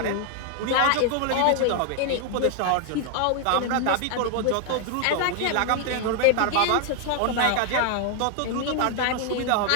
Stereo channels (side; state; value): both; different; correlation 0.00